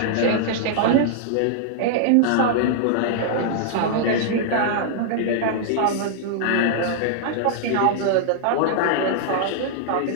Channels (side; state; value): both; different; correlation -0.01